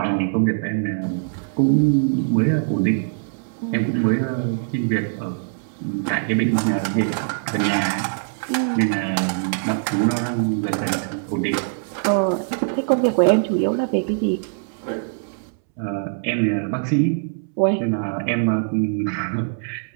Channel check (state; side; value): silent; left; 64 dB below the other